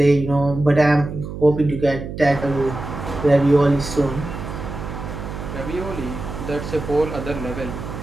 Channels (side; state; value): right; noise; hum, 8 dB below the sound